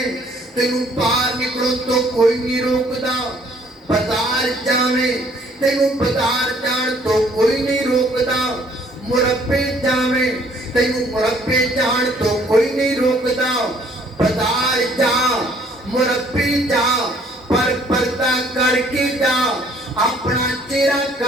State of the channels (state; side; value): normal; both; correlation 0.61